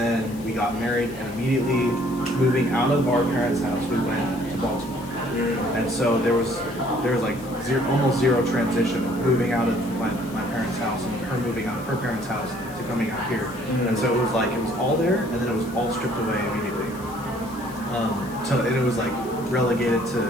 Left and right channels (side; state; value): left; noise; hiss, 20 dB below the sound